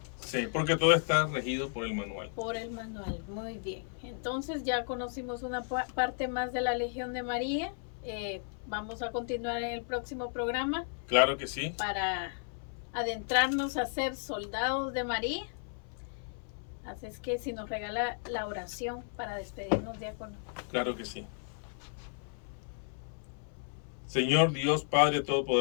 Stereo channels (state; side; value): silent; right; 55 dB below the other